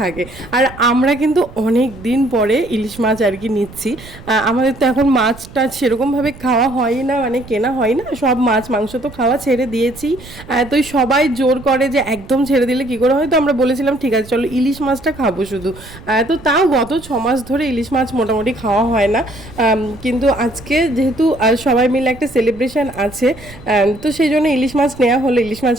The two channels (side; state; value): right; noise; rumble, 18 dB below the sound